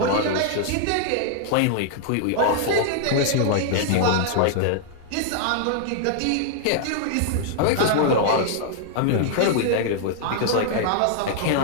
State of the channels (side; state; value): both; different; correlation -0.01